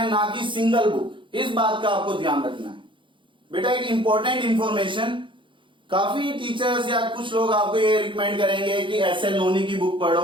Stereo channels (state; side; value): late; left; 0.24 ms